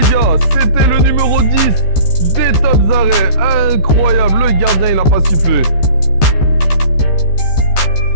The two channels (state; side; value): late; right; 14 ms